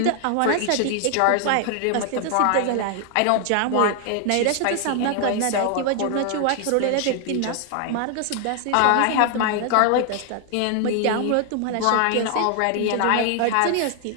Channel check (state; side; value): different; both; correlation 0.00